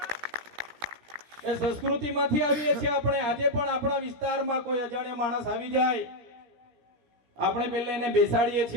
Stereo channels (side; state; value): left; late; 17 ms